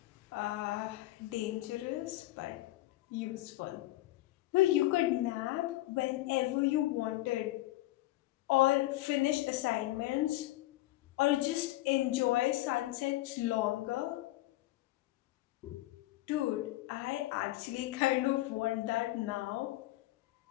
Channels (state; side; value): quieter; right; 17.2 dB